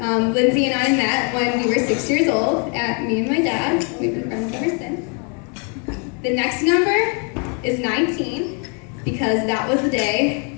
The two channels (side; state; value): right; quieter; 37.9 dB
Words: and I met when we were 6 years old at me and my dad. We've been friends ever since. The next number is 19, because that was the